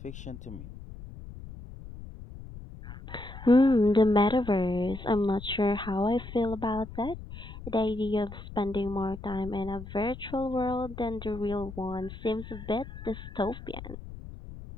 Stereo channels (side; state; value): left; noise; rumble, 13 dB below the sound